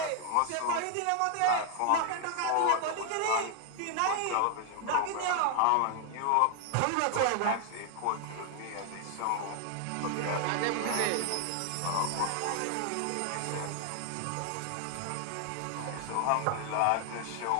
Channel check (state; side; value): different; both; correlation 0.00